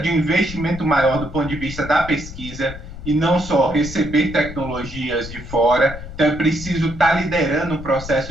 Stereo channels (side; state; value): left; noise; rumble, 12 dB below the sound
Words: um investimento maior do ponto de vista da pesquisa e não só receber tecnologias de fora. Então, é preciso estar liderando o